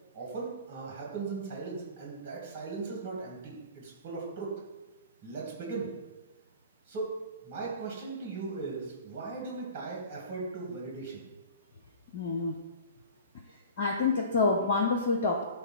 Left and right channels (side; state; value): both; inverted; correlation -0.40